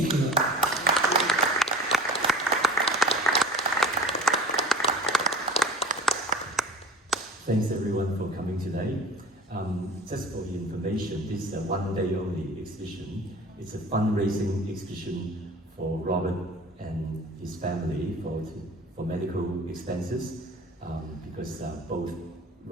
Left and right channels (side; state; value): both; normal; correlation 0.41